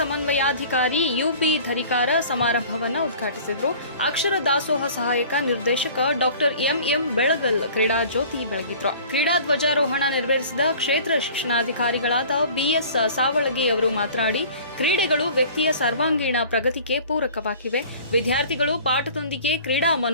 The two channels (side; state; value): both; inverted; correlation -0.46